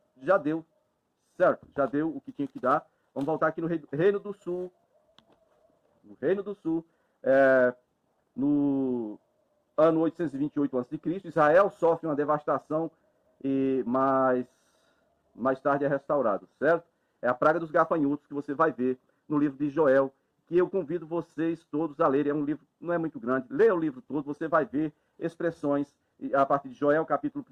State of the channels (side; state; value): both; identical; correlation 1.00